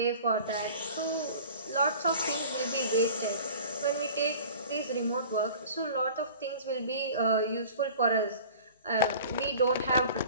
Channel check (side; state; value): both; inverted; correlation -0.44